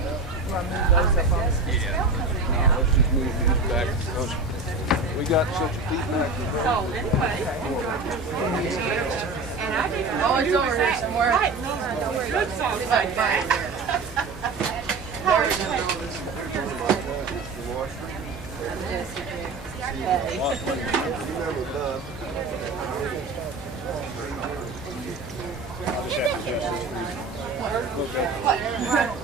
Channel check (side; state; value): left; quieter; 3.7 dB